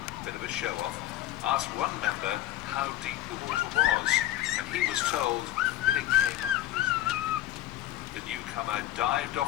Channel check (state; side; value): quieter; right; 14.0 dB